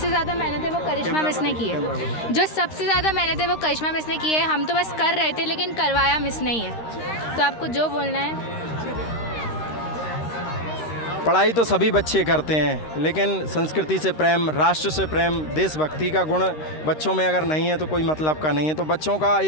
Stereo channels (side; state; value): right; late; 13 ms